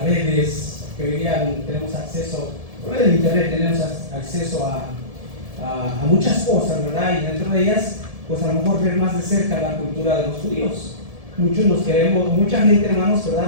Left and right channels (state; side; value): late; left; 1.7 ms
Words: redes, que hoy día tenemos acceso, por medio del internet tenemos acceso a muchas cosas, ¿verdad? Y dentro de ellas, pues a lo mejor ver más de cerca la cultura de los judíos. Muchos nos queremos, mucha gente, hermanos,